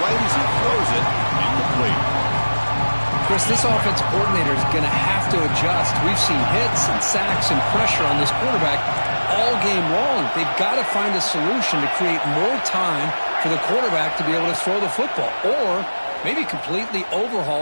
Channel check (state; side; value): inverted; both; correlation -1.00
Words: right as he throws it. Incomplete. Chris, this offense coordinator is going to have to adjust. We've seen hits and sacks and pressure on this quarterback all game long. They've got to find a solution to create more time for the quarterback to be able to throw the football, or maybe completely